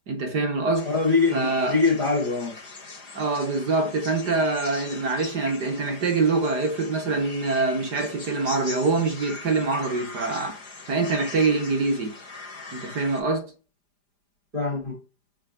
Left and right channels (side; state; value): left; late; 5.0 ms